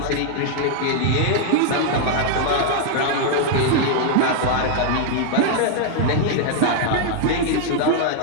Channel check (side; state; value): both; different; correlation 0.00